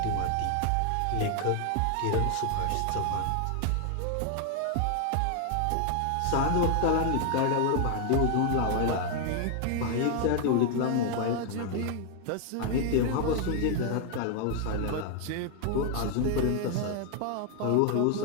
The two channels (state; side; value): different; both; correlation 0.00